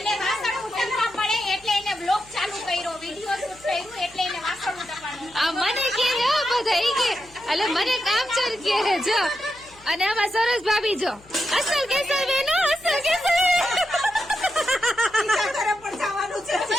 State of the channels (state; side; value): noise; left; hum, 26 dB below the sound